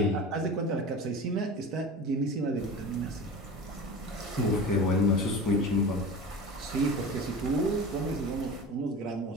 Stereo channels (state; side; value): normal; both; correlation 0.33